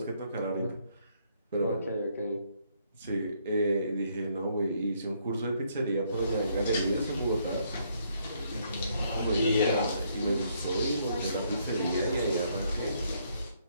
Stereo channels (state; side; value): inverted; both; correlation -0.70